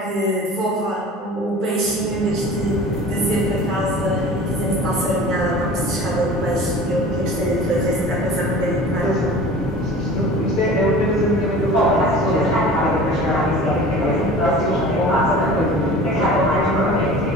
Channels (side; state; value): both; normal; correlation 0.41